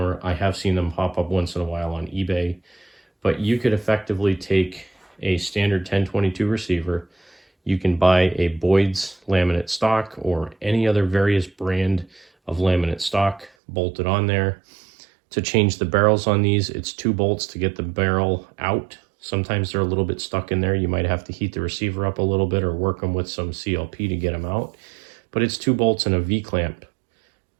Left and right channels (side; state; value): left; drops out; at 13.5 s